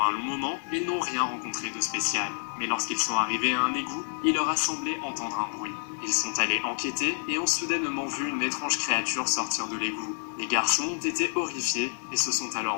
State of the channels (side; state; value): right; silent; 57 dB below the other